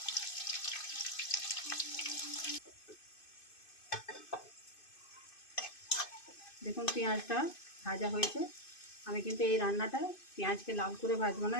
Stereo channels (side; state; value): right; late; 2.5 ms